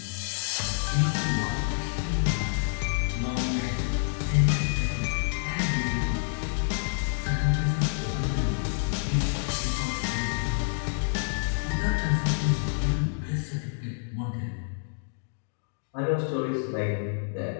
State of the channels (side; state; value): right; silent; digital silence